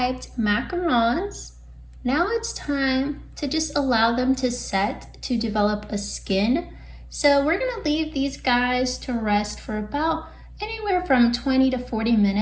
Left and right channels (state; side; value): identical; both; correlation 1.00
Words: macarons, now it's time to just allow them to set to develop a skin. So we're gonna leave these guys to rest for about anywhere from 20 to 40